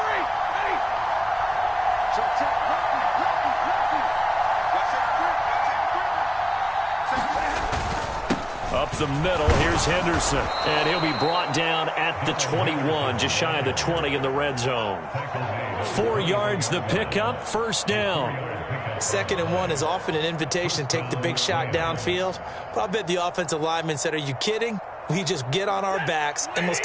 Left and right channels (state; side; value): identical; both; correlation 1.00